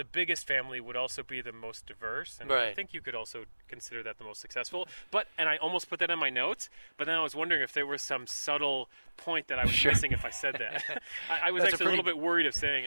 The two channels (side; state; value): both; inverted; correlation -1.00